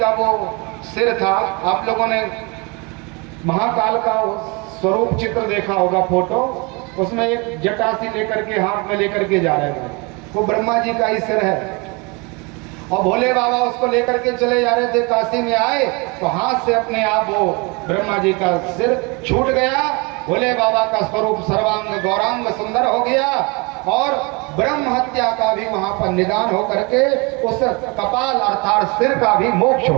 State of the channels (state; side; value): quieter; left; 28.9 dB